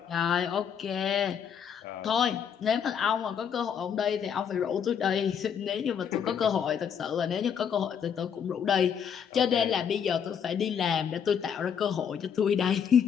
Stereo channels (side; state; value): right; quieter; 7.7 dB